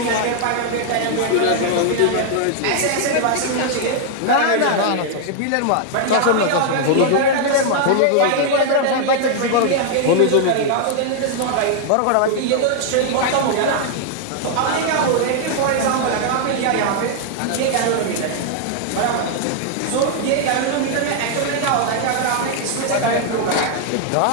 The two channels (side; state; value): both; different; correlation 0.00